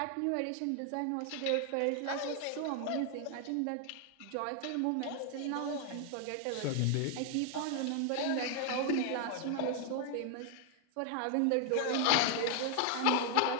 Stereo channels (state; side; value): different; both; correlation 0.00